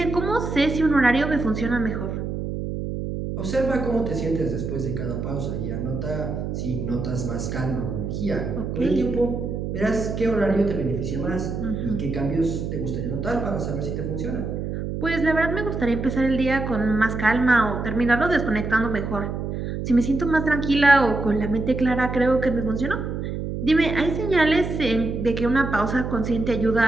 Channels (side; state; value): right; noise; hum, 4 dB below the sound